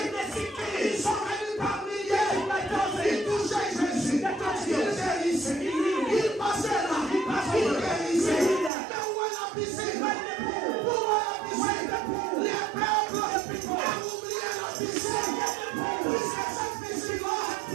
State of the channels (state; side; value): drops out; left; at 8.7 s